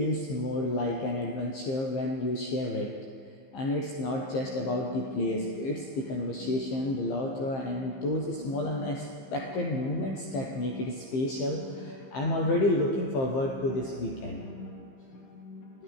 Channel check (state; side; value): late; right; 15 ms